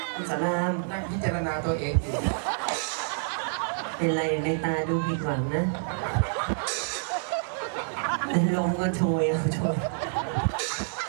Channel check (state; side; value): silent; left; digital silence